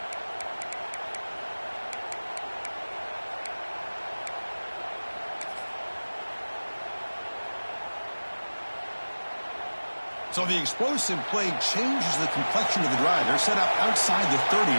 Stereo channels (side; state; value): both; inverted; correlation -1.00